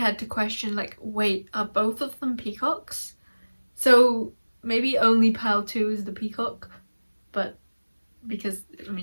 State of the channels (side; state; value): both; inverted; correlation -1.00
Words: to question, like, wait, are both of them peacocks? So maybe only pile 2 is the peacock, but because, I